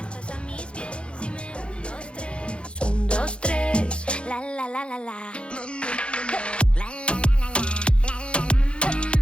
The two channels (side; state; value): right; late; 0.057 ms